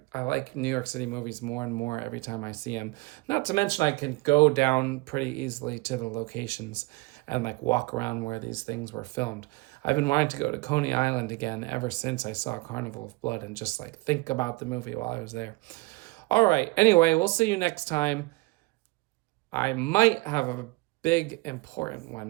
New York City movies more and more every time I see them. Not to mention I can go down pretty easily to the locations and like walk around where these things were filmed. I've been wanting to go to Coney Island again ever since I saw Carnival of Blood and just like think about the movie while I was there. All right, anyway, we'll see you next time. I might have a big important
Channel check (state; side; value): quieter; left; 23.4 dB